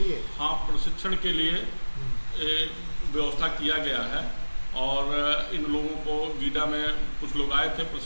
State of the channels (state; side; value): inverted; both; correlation -1.00